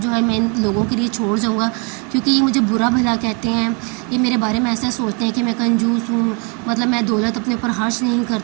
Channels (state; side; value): quieter; left; 34.5 dB